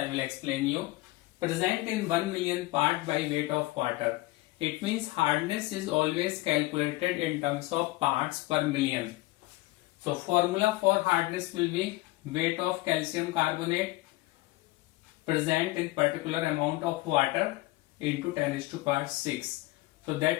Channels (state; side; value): quieter; right; 19.8 dB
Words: will explain you. Present in 1 million part by weight of water. It means hardness is always calculated in terms of parts per million. So formula for hardness will be weight of calcium carbonate present in particular amount of water into 10⁻⁶. So